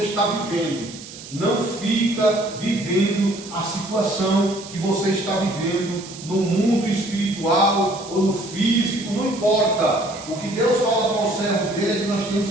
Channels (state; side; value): noise; right; hiss, 15 dB below the sound